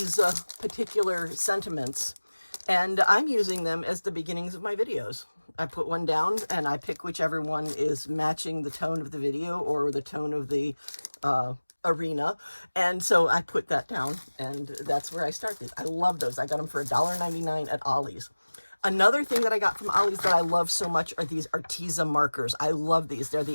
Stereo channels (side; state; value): both; inverted; correlation -1.00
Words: particular sentiments. And I'm using them as the beginnings of my videos. I put one down and I pick whichever one is matching the tone of the video or the tone of the arena. And so I put that down, and that's where I start these. I love those. I got them for $1.99 at Ollie's. Another thing that I got from Ollie's that I love so much are these Arteza markers. I love these. They're